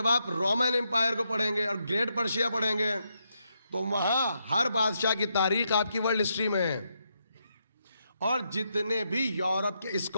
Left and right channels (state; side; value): inverted; both; correlation -0.81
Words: آپ رومن امپائر کو پڑھیں گے اور گریٹ پرشیا پڑھیں گے تو وہاں ہر بادشاہ کی تاریخ آپ کی ورلڈ ہسٹری میں ہے. اور جتنے بھی یورپ کے